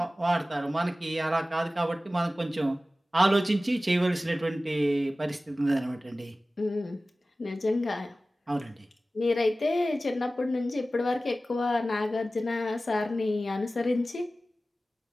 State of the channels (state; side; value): normal; both; correlation 0.96